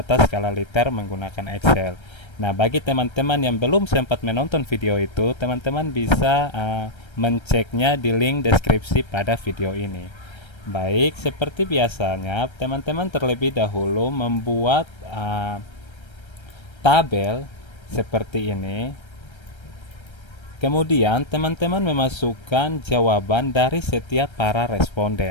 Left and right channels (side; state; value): right; late; 1.3 ms